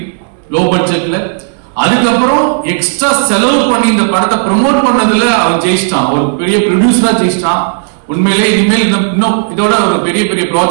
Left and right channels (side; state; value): left; silent; digital silence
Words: லோ பட்ஜெட்ல. அதுக்கப்புறம் எக்ஸ்ட்ரா செலவு பண்ணி இந்த படத்தை ப்ரமோட் பண்ணதுல அவன் ஜெயிச்சிட்டான், ஒரு பெரிய ப்ரொடியூசரா ஜெயிச்சிட்டான். உண்மையிலே இனிமேல் இன்னும் இதோட ஒரு பெரிய